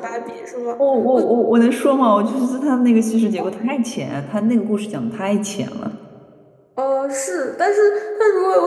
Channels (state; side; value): identical; both; correlation 1.00